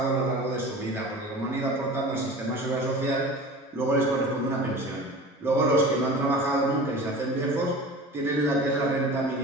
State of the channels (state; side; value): normal; both; correlation 0.37